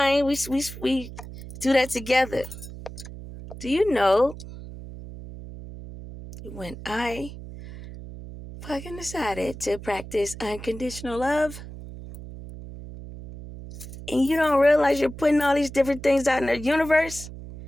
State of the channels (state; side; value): noise; right; hum, 13 dB below the sound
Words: We do that together. Do you know when I fucking decided to practice unconditional love, and you don't realize you're putting all these different things out in the universe,